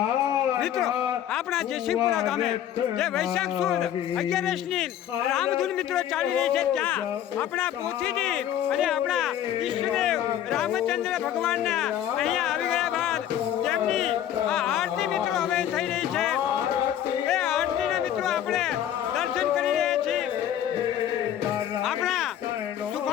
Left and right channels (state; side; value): quieter; right; 10.9 dB